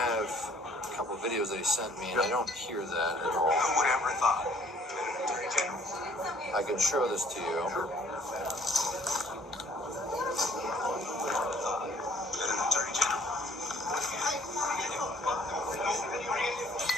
a couple of videos that he sent me, and I don't hear that at all. Whatever thought. I can show this to you.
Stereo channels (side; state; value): both; normal; correlation 0.59